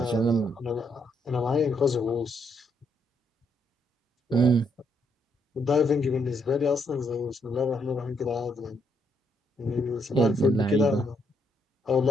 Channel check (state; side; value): normal; both; correlation 0.74